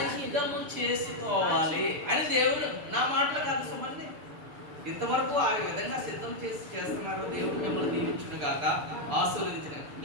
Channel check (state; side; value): late; left; 6.9 ms